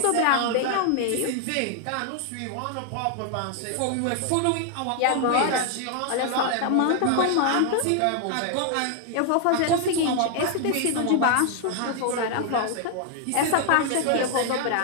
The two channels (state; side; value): different; both; correlation 0.00